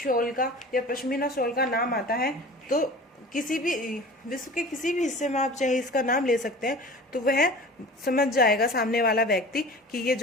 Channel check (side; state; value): both; normal; correlation 0.40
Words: का या पश्मीना शॉल का नाम आता है, तो किसी भी विश्व के किसी भी हिस्से में आप चाहे इसका नाम ले सकते हैं, तो वह समझ जाएगा सामने वाला व्यक्ति कि ये